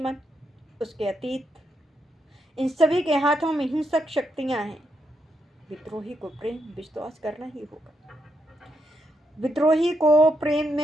उसके अतीत, इन सभी के हाथों में हिंसक शक्तियां हैं। विद्रोही को प्रेम विश्वास करना ही होगा। विद्रोही को प्रेम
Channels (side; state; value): both; normal; correlation 0.81